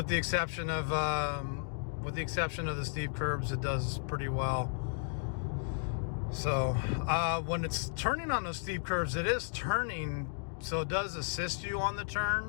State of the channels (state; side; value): silent; right; digital silence